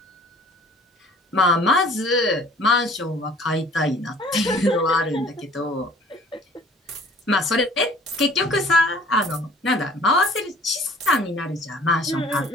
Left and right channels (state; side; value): normal; both; correlation 0.52